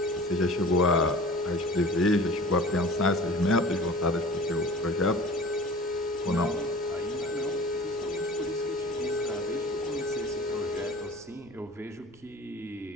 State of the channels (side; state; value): right; noise; rumble, 27 dB below the sound